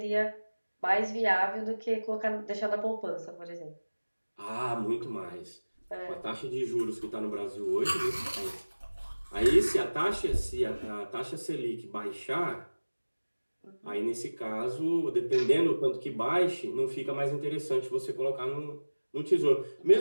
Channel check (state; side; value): inverted; both; correlation -1.00